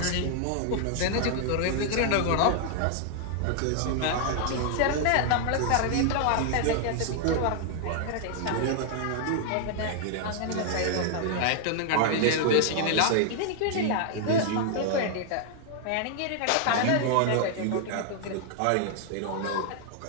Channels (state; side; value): different; both; correlation 0.00